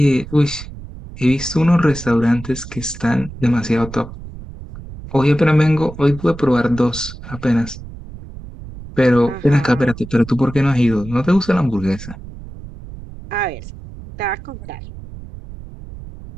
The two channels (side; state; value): right; noise; rumble, 14 dB below the sound